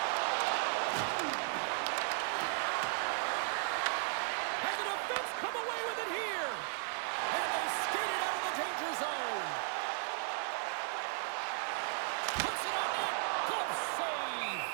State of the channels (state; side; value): silent; left; 54 dB below the other